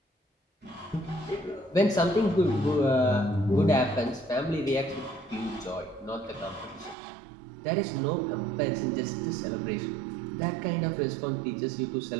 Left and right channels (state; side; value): drops out; left; at 7.0 s